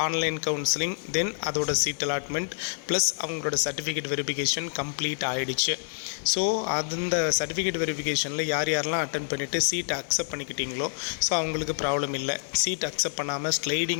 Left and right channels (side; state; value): right; silent; digital silence